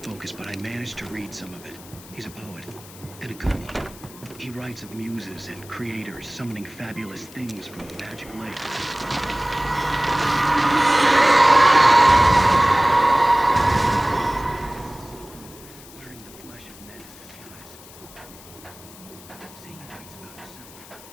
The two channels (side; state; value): left; noise; hiss, 20 dB below the sound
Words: but I managed to read some of it. He's a poet, and a good one. He writes of muses and creators summoning fabulous things from the magic lake.